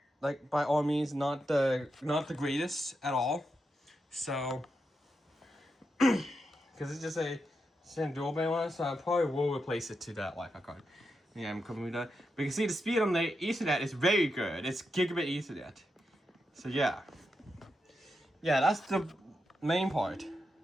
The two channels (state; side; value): normal; both; correlation 0.86